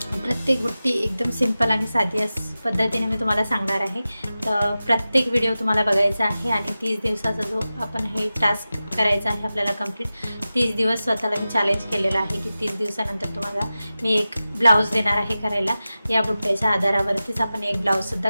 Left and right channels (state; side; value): inverted; both; correlation -0.95